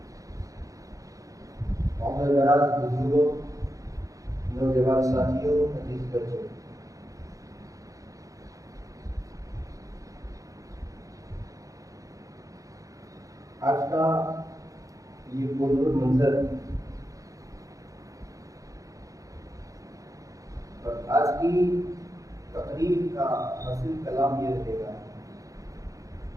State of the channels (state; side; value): late; left; 0.16 ms